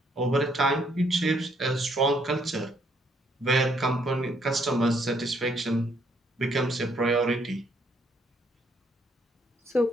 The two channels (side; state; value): both; normal; correlation 0.69